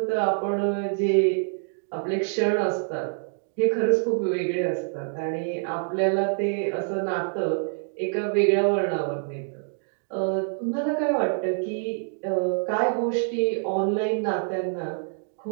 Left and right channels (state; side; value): silent; left; digital silence